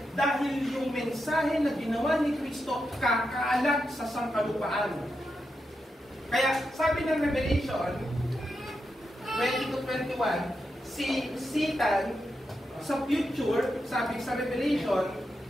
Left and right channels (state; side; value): normal; both; correlation 0.86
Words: Dahil yung mensahe na ginawa ni Kristo kakalat sa sangkalupaan. Kaya sabi ng Revelation 20-21, si Satan sa future, sabi sa Revelation,